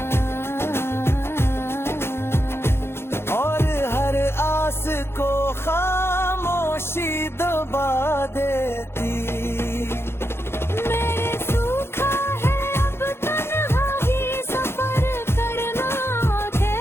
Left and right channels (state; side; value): late; right; 0.12 ms